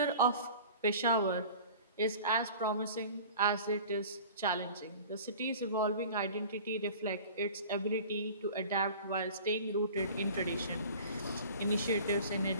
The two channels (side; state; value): both; inverted; correlation -0.42